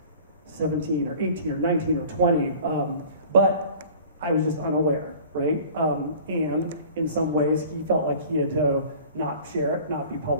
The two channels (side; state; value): both; inverted; correlation -0.45